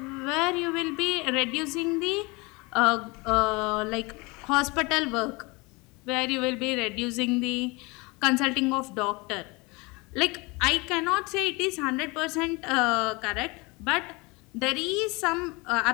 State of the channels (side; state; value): right; quieter; 26.0 dB